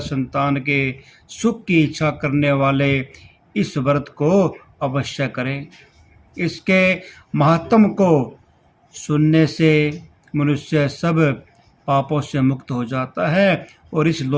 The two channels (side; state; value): both; identical; correlation 1.00